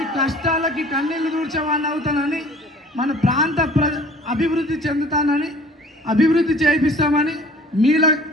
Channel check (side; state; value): both; normal; correlation 0.49